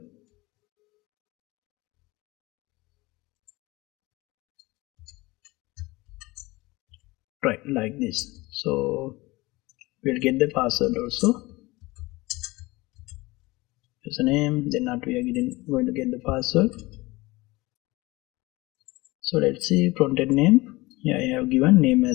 Right, like this. So we'll get the password also, username, then not we are going to get the password. So let's see frontend name. Here I have given name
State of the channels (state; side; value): quieter; right; 21.5 dB